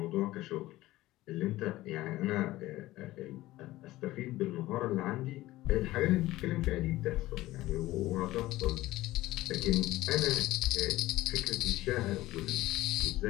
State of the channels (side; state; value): right; quieter; 17.0 dB